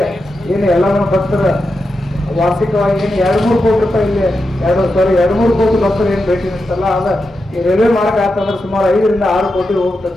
ಏನು ಎಲ್ಲ ಭಕ್ತರ ವಾರ್ಷಿಕವಾಗಿ ಏನು 2-3 ಕೋಟಿ ರೂಪಾಯಿ ಇಲ್ಲಿ 2-3 ಕೋಟಿ ಭಕ್ತರು ಏನು ಭೇಟಿ ನೀಡ್ತಲ್ಲ, ಅದ ಈ ರೈಲ್ವೆ ಮಾರ್ಗ ಆತಂದ್ರೆ ಸುಮಾರು 5 ರಿಂದ 6 ಕೋಟಿ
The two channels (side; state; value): both; normal; correlation 0.88